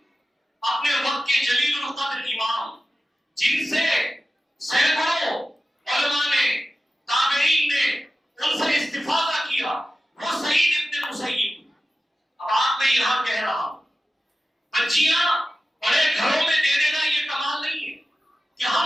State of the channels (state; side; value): normal; both; correlation 0.94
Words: اپنے وقت کے جلیل القدر امام، جن سے سینکڑوں علماء نے، تابعین نے ان سے استفادہ کیا، وہ سعید ابن مسیب۔ اب آپ میں یہاں کہہ رہا ہوں، بچیاں بڑے گھروں میں دے دینا یہ کمال نہیں ہے کہ ہم